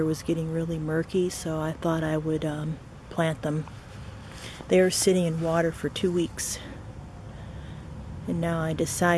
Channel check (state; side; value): identical; both; correlation 1.00